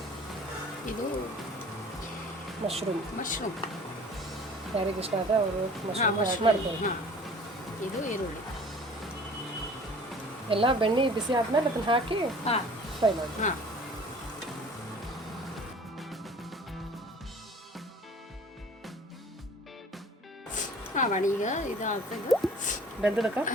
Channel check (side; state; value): both; normal; correlation 0.48